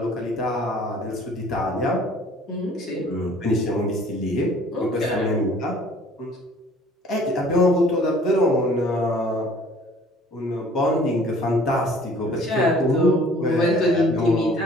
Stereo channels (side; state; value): both; normal; correlation 0.53